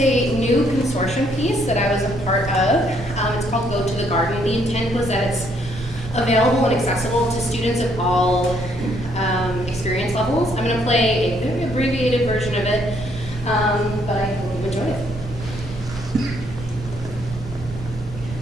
new consortium piece that I was a part of. It's called Go to the Garden. The intent was that it's available and accessible to students of all experience levels. I'm going to play a very abbreviated version of it, but I hope you enjoy it.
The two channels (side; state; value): both; normal; correlation 0.69